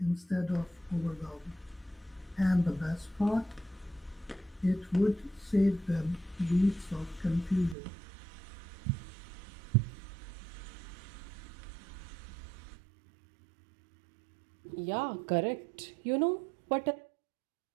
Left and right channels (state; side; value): drops out; left; at 7.8 s